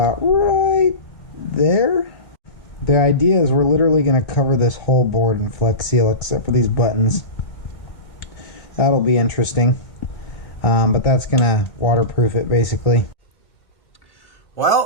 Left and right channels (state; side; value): late; right; 2.0 ms